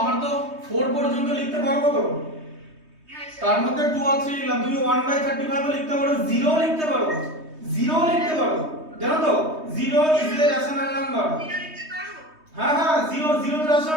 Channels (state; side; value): late; left; 3.2 ms